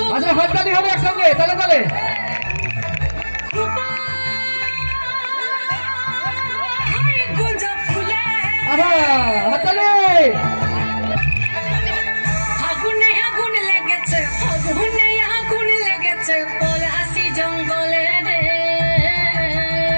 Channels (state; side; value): inverted; both; correlation -1.00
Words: আচ্ছা হাততালি হবে একসঙ্গে, তালে তালে। হাততালি। আগুনে আগুন লেগেছে, আগুনে আগুন লেগেছে পলাশি জঙ্গলে রে।